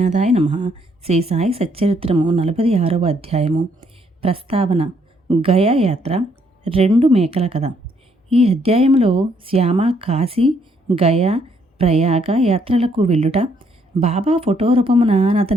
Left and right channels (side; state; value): both; normal; correlation 0.70